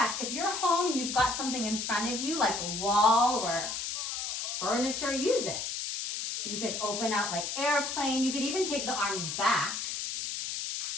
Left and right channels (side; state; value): left; noise; hiss, 3 dB below the sound